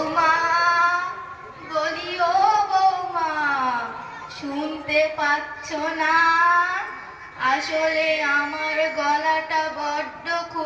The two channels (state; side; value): identical; both; correlation 1.00